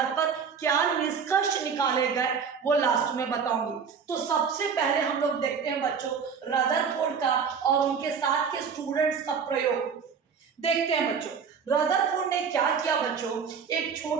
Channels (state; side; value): quieter; left; 6.3 dB